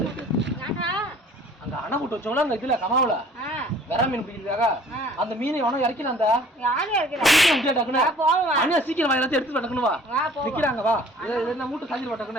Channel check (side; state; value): both; normal; correlation 0.52